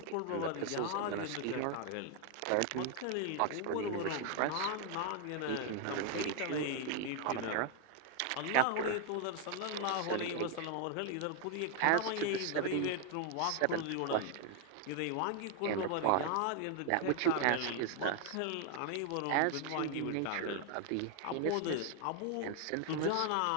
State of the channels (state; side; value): different; both; correlation 0.00